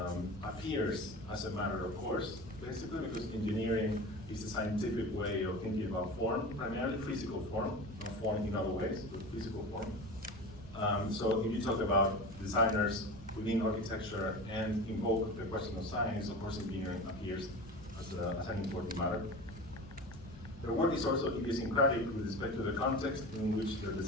appears as a matter of course, basically because engineering is a scientific way of thinking about form, primarily physical form, not form in other ways, but physical form. So if you talk about designers within architecture and invoke the question of science, of course engineering appears as an important matter. Their work is also idiosyncratic with respect to the context in which their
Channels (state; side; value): normal; both; correlation 0.31